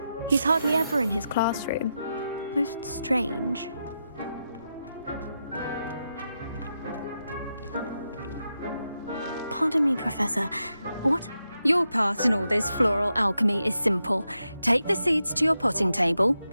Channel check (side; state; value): both; inverted; correlation -0.87